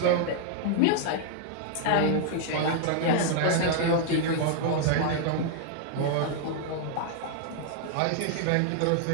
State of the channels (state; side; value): different; both; correlation -0.01